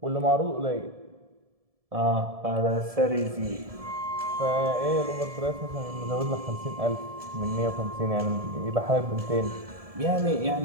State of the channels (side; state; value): left; late; 1.7 ms